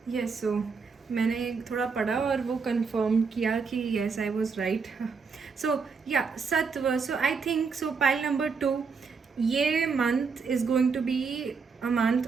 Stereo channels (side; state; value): left; quieter; 5.2 dB